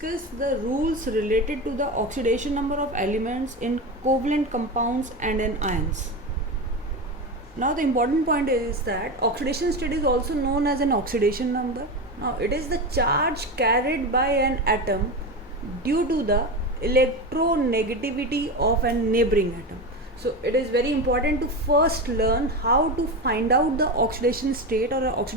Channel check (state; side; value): normal; both; correlation 0.20